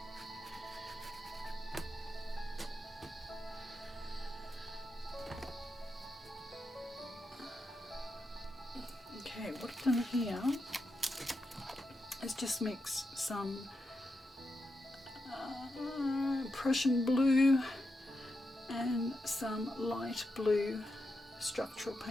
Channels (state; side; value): normal; both; correlation 0.86